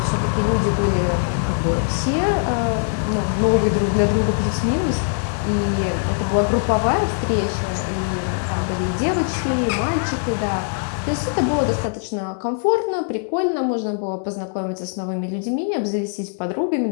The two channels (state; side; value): silent; right; digital silence